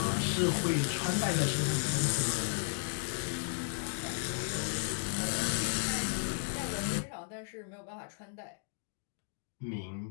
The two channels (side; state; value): right; silent; digital silence